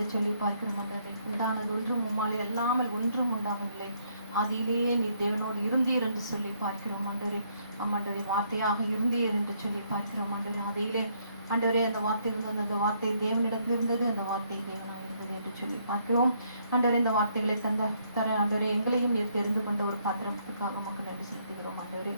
சொல்லி பார்க்கிறோம். ஆண்டவரே, உண்டானது ஒன்றும் உம்மாலே அல்லாமல் ஒன்றும் உண்டாகவில்லை. ஆதியிலேயே நீர் தேவனோடு இருந்தீர் என்று சொல்லி பார்க்கிறோம். ஆண்டவரே, ஆண்டவரே வார்த்தையாக இருந்தீர் என்று சொல்லி பார்க்கிறோம். ஆண்டவரே, ஆதியிலே ஆண்டவரே அந்த வார்த்தை இருந்தது, அந்த வார்த்தை தேவனிடத்தில் இருந்தது, அந்த வார்த்தை தேவனாக இருந்தது என்று சொல்லி பார்க்கிறோம். ஆண்டவரே, இந்த வார்த்தைகளை தர ஆண்டவரே எங்களையும் நீர் தெரிந்து கொண்ட ஒரு பாத்திரத்துக்காக மக்கள் நன்றி செலுத்துகிறோம். ஆண்டவரே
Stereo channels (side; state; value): both; inverted; correlation -0.70